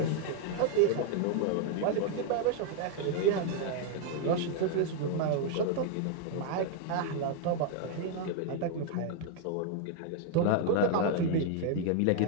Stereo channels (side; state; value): both; different; correlation 0.00